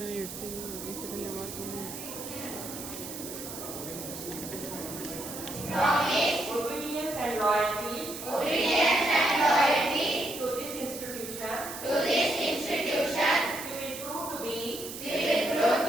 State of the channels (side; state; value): right; noise; hiss, 10 dB below the sound